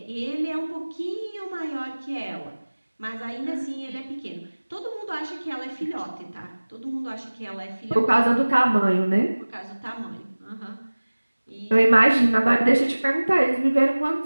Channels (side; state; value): both; inverted; correlation -1.00